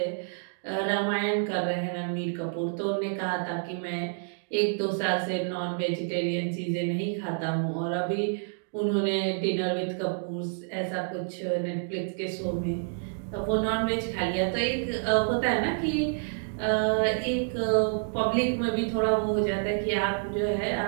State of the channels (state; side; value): silent; left; digital silence